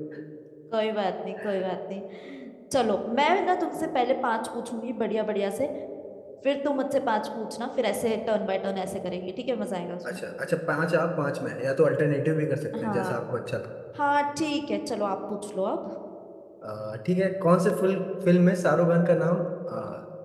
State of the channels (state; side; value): identical; both; correlation 1.00